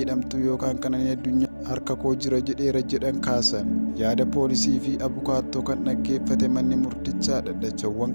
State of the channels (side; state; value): both; inverted; correlation -1.00